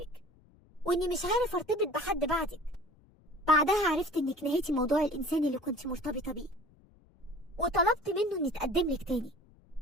واني مش عارف ارتبط بحد بعدك. بعدها عرفت انك نهيتي موضوع الانسان اللي كنت مرتبطه بيه، وطلبت منه اني اتقدم لك تاني،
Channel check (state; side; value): noise; left; rumble, 29 dB below the sound